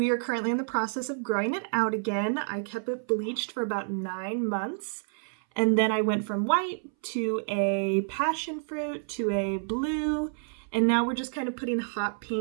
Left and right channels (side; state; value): left; silent; 59 dB below the other